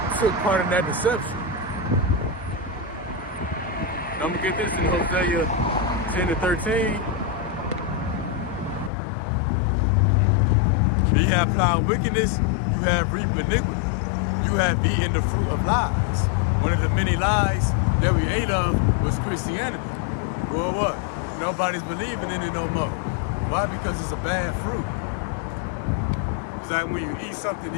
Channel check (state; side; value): drops out; right; at 8.9 s